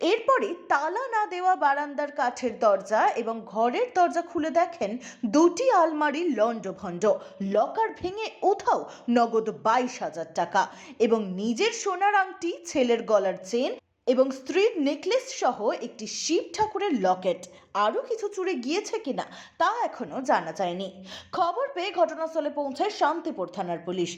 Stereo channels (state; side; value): identical; both; correlation 1.00